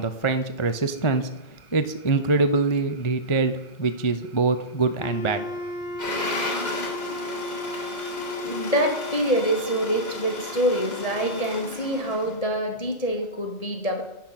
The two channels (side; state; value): right; late; 2.1 ms